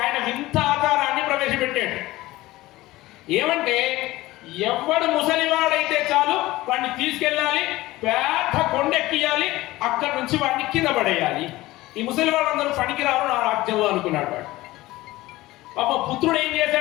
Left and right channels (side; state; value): right; quieter; 18.2 dB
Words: ఆయన వింత ఆచారాన్ని ప్రవేశపెట్టాడు. ఏమంటే, ఎవడు ముసలివాడైతే చాలు వాడిని తీసుకెళ్ళాలి, పెద్ద కొండెక్కియాలి, అక్కడి నుంచి వాడిని కింద పడేయాలి. ఈ ముసలివాళ్ళందరూ పనికిరారు నా రాజ్యంలో అనుకున్నాడు వాడు. పాప పుత్రుడు ఏం